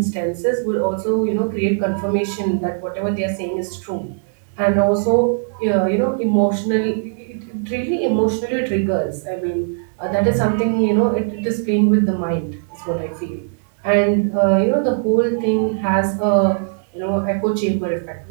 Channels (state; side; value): silent; left; digital silence